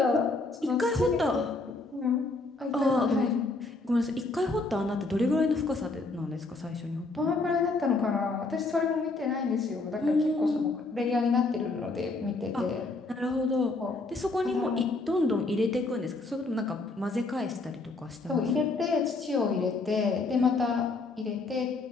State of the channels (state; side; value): quieter; right; 3.4 dB